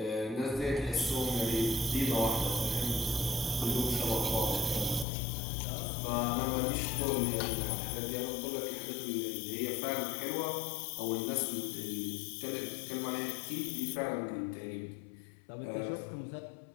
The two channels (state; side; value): drops out; right; at 5.1 s